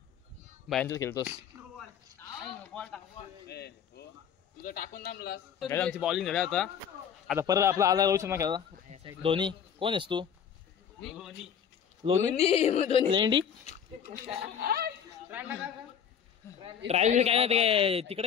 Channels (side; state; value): right; quieter; 8.1 dB